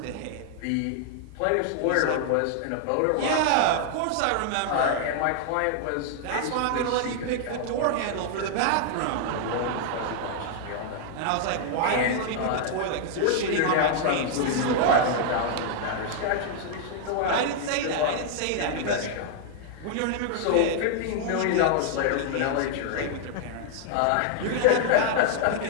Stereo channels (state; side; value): different; both; correlation 0.00